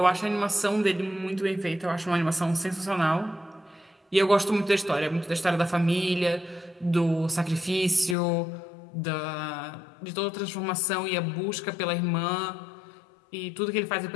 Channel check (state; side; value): drops out; right; at 8.2 s